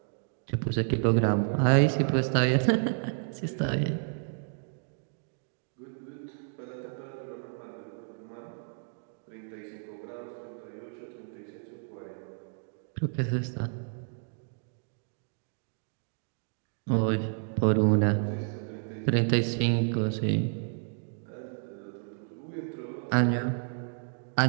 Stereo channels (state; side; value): silent; left; 57 dB below the other